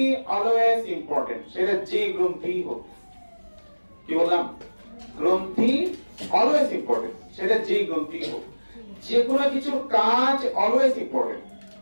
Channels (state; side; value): inverted; both; correlation -1.00